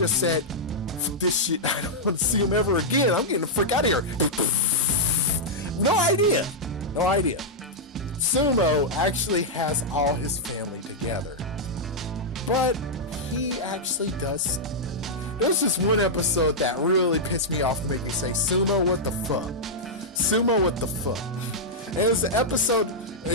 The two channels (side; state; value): both; normal; correlation -0.06